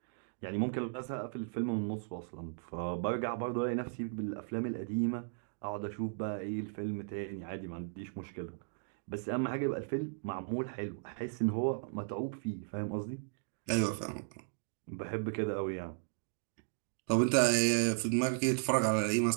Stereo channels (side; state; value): left; silent; digital silence